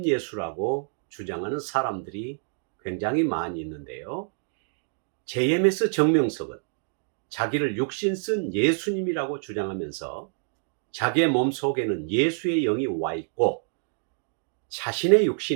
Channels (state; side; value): silent; left; 60 dB below the other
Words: 주장하는 사람들이 굉장히 많이 있는데요. JMS 정명석은 자기를 육신 쓴 예수님이라고 주장하면서 자기의 몸속에는 예수의 영이 와 있고 자신의